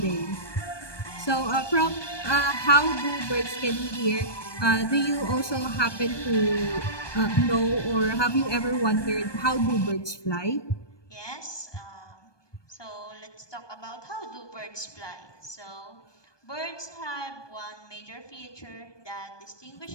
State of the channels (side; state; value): right; late; 1.2 ms